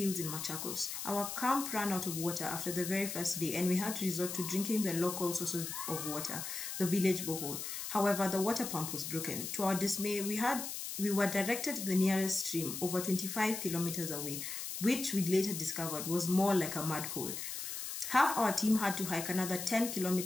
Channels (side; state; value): left; noise; hiss, 6 dB below the sound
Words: in Machakos. Our camp ran out of water after the very first day, and we had to resort to drinking the local sources of water, the village borehole. However, the water pump was broken. To our dismay, we were directed to the nearest stream, over 25 kilometers away, which we later discovered was more like a mud hole. Half our team had to hike another 10